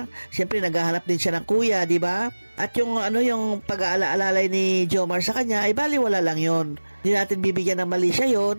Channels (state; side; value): inverted; both; correlation -1.00